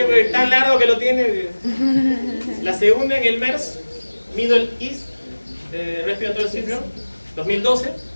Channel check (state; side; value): inverted; both; correlation -1.00